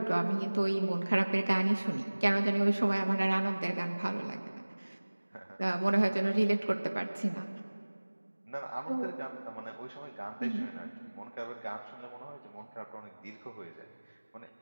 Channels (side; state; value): both; inverted; correlation -1.00